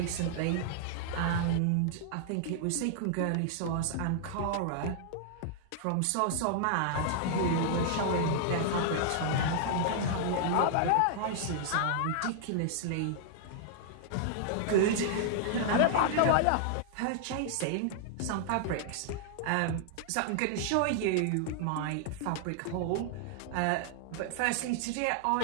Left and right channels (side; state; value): both; different; correlation -0.01